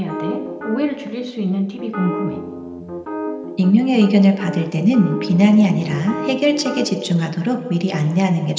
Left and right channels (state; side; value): identical; both; correlation 1.00